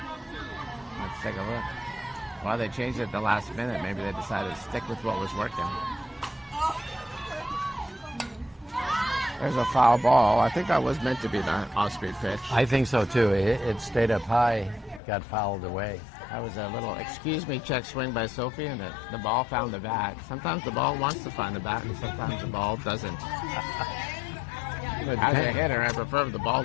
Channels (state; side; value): drops out; right; at 15.0 s